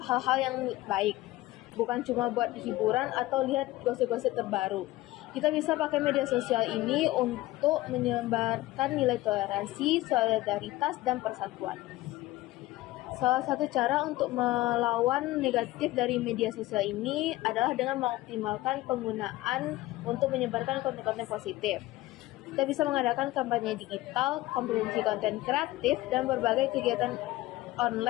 hal-hal yang baik, bukan cuma buat hiburan atau lihat gosip-gosip terbaru. Kita bisa pakai media sosial ini untuk menyebarkan nilai toleransi, solidaritas, dan persatuan. Salah satu cara untuk melawan negatif dari media sosial ini adalah dengan mengoptimalkan penggunaan untuk menyebarkan konten-konten positif. Kita bisa mengadakan kampanye digital, kompetisi konten kreatif, dan berbagai kegiatan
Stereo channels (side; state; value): right; quieter; 17.8 dB